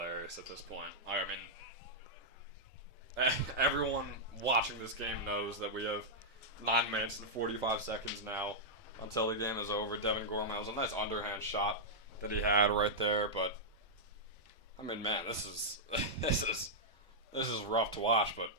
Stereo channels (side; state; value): right; late; 1.6 ms